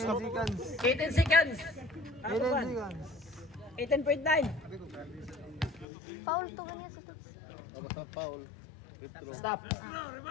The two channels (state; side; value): drops out; right; at 5.9 s